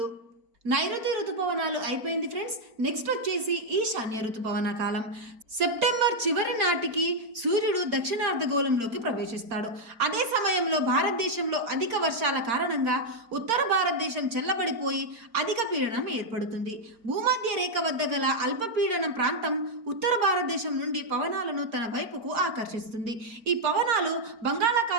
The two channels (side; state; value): left; late; 4.4 ms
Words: నైరుతి ఋతుపవనాలు అయిపోయింది ఫ్రెండ్స్. నెక్స్ట్ వచ్చేసి ఈశాన్య ఋతుపవన కాలం. సెప్టెంబర్ చివరి నాటికి సూర్యుడు దక్షిణార్ధగోళంలోకి ప్రవేశిస్తాడు. అదే సమయంలో భారతదేశంలో అధిక వర్షాల కారణంగా ఉత్తర భారతదేశం చల్లబడిపోయి అధిక పీడనం ఏర్పడుతుంది. భూమధ్య రేఖ వద్ద గల అల్పపీడనం ప్రాంతం ఉత్తర భారతదేశం నుండి పవనాలను తన వైపుకు ఆకర్షిస్తుంది. ఈ పవనాలు